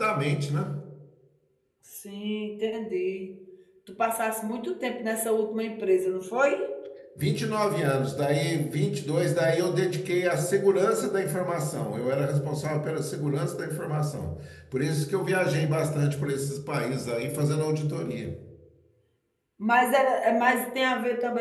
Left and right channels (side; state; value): both; identical; correlation 1.00